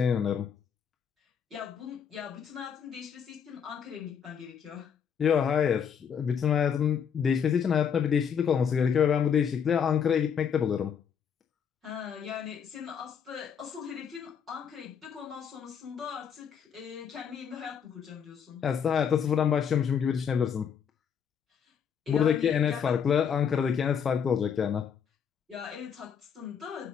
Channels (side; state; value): right; quieter; 7.5 dB